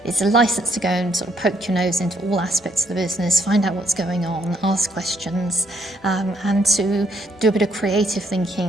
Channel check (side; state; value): both; normal; correlation 0.71